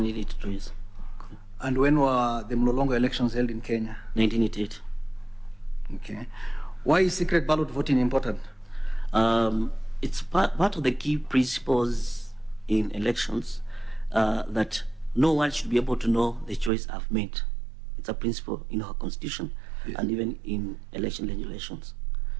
yes. And when were the Mlolongo elections held in Kenya? 1988. Okay. Why is secret ballot voting important? It's part of the key principles in elections that no one should be able to know the choice I've made. It's a principle in our constitution, yes, and even in election regulations.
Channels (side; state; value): left; drops out; at 16.7 s